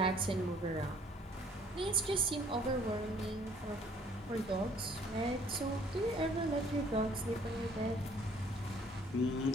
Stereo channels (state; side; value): normal; both; correlation 0.59